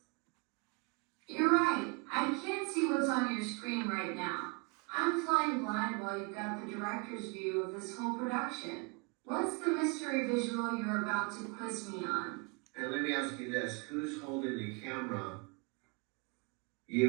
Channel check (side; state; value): left; quieter; 30.6 dB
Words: You're right. I can't see what's on your screen right now. I'm flying blind while you've got the director's view of this whole production. What's the mystery visual you're about to quiz me on? And let me ask you this, who's holding the camera?